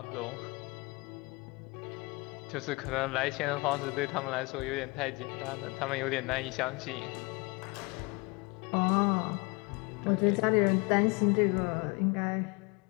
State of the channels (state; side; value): quieter; right; 27.1 dB